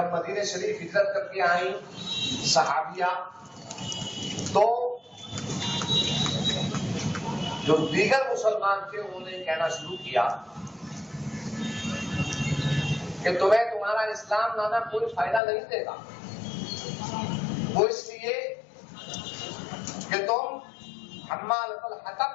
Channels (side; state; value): right; drops out; at 15.4 s